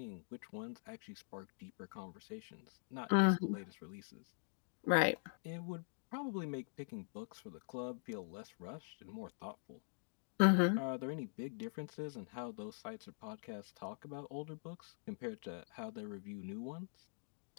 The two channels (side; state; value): right; silent; digital silence